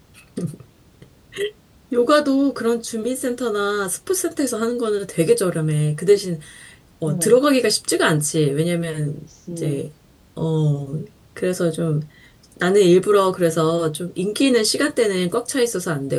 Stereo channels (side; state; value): both; identical; correlation 1.00